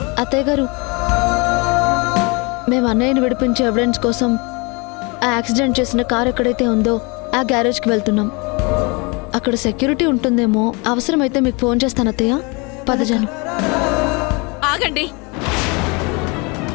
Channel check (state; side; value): quieter; right; 29.1 dB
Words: అత్తయ్య గారు, మేము అన్నయ్యని విడిపించే ఎవిడెన్స్ కోసం ఆ యాక్సిడెంట్ చేసిన కార్ ఎక్కడైతే ఉందో ఆ గ్యారేజ్కి వెళ్తున్నాం. అక్కడ సెక్యూరిటీ ఉంటుందేమో, అవసరమైతే మీకు ఫోన్ చేస్తాను అత్తయ్య. పదజాను. ఆగండి.